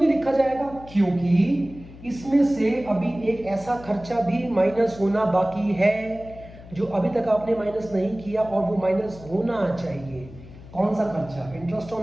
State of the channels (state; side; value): noise; left; hum, 18 dB below the sound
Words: लिखा जाएगा? क्योंकि इसमें से अभी एक ऐसा खर्चा भी माइनस होना बाकी है जो अभी तक आपने माइनस नहीं किया, और वो माइनस होना चाहिए। कौन सा खर्चा? इंटरेस्ट